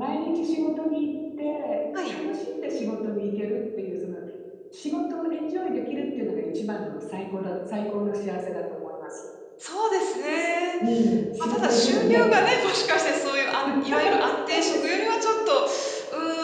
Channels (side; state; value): both; identical; correlation 1.00